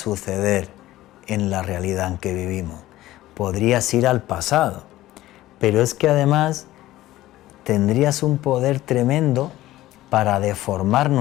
en la realidad en que vivimos. Podrías ir al pasado, pero es que además tendrías un poder tremendo para deformar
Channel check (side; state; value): right; quieter; 15.8 dB